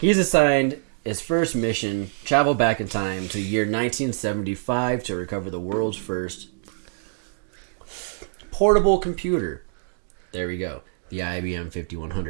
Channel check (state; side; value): silent; left; digital silence